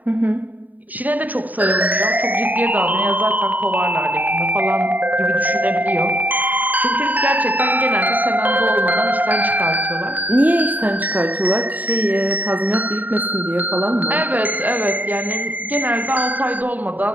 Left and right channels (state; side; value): late; left; 0.082 ms